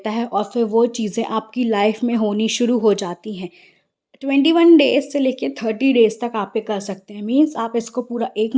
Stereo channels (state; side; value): identical; both; correlation 1.00